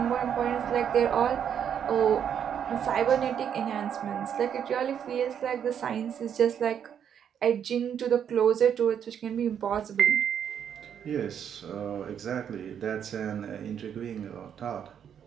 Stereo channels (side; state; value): left; quieter; 8.5 dB